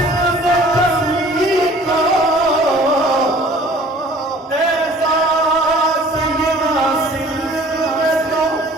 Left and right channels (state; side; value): normal; both; correlation 0.51